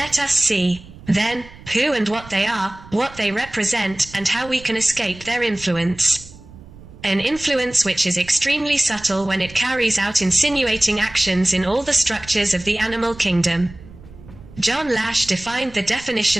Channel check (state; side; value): noise; right; rumble, 19 dB below the sound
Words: us see, then, who and what they are, what they represent, and how we can escape their influence. An influence which is extremely subtle when it carries out insinuating actions in all the structures of the animal kingdom. John Lash defined the